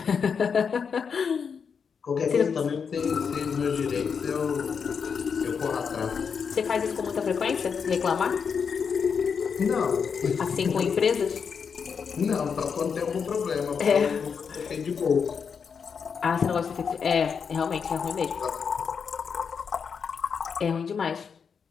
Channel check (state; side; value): quieter; right; 6.3 dB